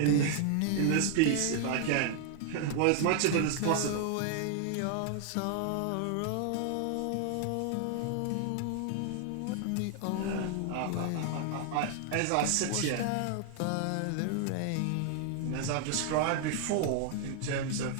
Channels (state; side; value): different; both; correlation 0.00